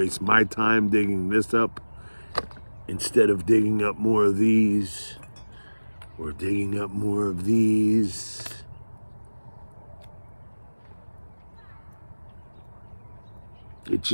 my time digging this up instead of digging up more of these or digging up more of these. It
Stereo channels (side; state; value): both; inverted; correlation -1.00